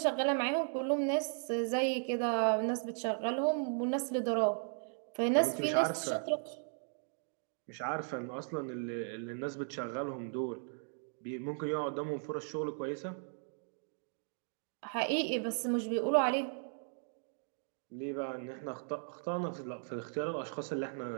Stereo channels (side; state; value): left; silent; 53 dB below the other